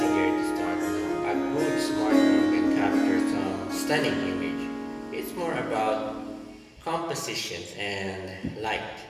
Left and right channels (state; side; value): identical; both; correlation 1.00